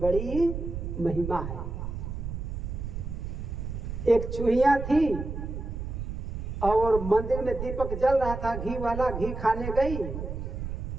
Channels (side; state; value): right; noise; rumble, 6 dB below the sound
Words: महिमा है। एक चूहिया थी और मंदिर में दीपक जल रहा था, घी वाला, घी खाने गई,